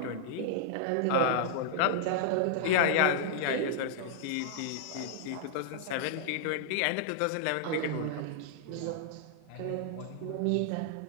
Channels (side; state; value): both; different; correlation -0.01